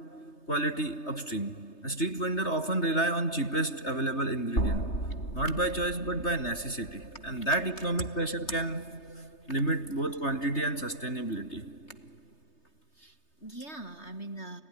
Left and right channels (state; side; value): late; right; 3.3 ms